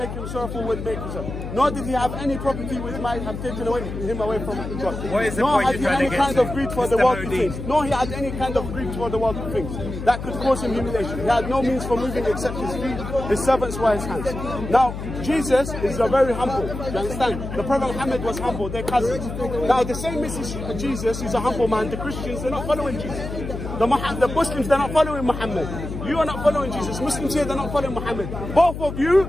him sorrowful with making himself. Nor did he have any property which might have taken him away from God. Nor had he any kind of greed for the worldly things. Nor he had any kind of greed for the worldly things that could cause him humiliation. He had no means for moving except his feet. His servants were his hands. Now, Jesus is a very humble. You understand? The Prophet Muhammad was humble. They're cousins. Now, the same message Jesus is a humble man. The Christians, they're not following Jesus. The Muslims, they're not following Muhammad. You are not following Jesus. Muslims here, they're not following Muhammad. Both of you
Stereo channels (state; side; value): noise; left; hum, 7 dB below the sound